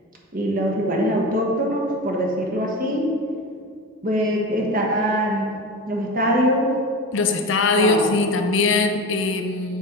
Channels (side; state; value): both; normal; correlation 0.27